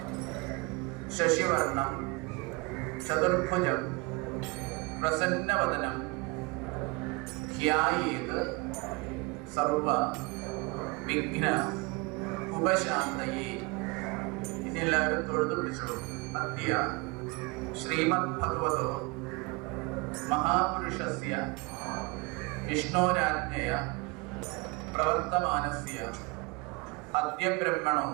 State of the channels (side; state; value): left; quieter; 27.2 dB